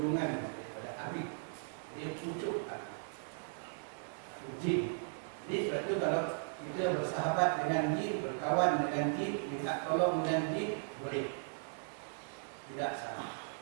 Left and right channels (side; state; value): left; silent; 53 dB below the other